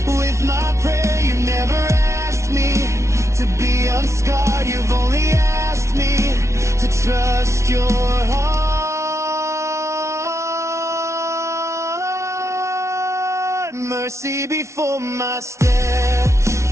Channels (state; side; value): late; left; 0.14 ms